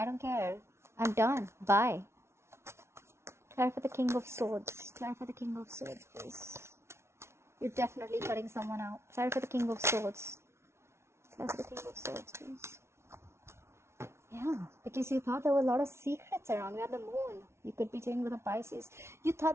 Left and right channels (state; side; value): late; left; 0.13 ms